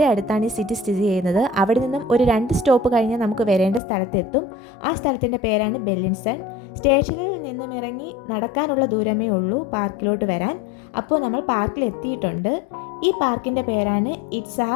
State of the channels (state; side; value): drops out; right; at 3.8 s